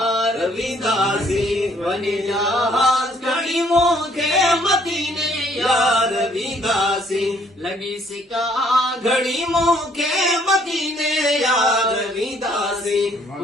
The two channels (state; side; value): normal; both; correlation 0.64